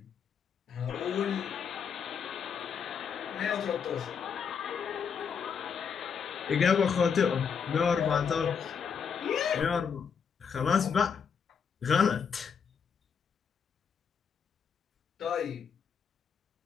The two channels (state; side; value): quieter; right; 6.6 dB